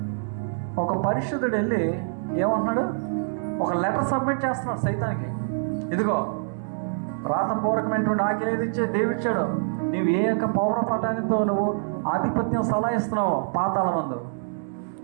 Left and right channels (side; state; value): left; silent; digital silence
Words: ఒక పరిశుద్ధుడు వెళ్ళి ఏమంటున్నాడు? ఒక లెటర్ సబ్మిట్ చేస్తున్నాడు సైతానికి. ఇదిగో రాతపూర్వకమైనటువంటి ఆజ్ఞ ఏది ఇచ్చే దేవుడిచ్చాడు. నువ్వు ఏ యొక్క పౌరపటానితో నువ్వు ఆధిపత్యం సలాయిస్తున్నావు పాతాళ మందు,